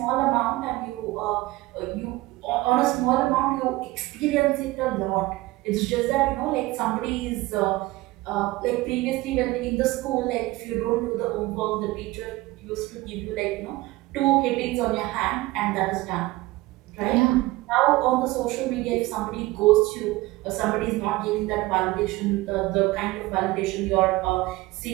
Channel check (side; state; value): left; quieter; 19.5 dB